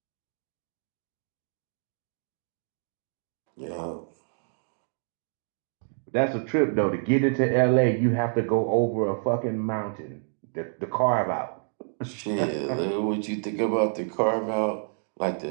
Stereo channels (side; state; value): left; silent; digital silence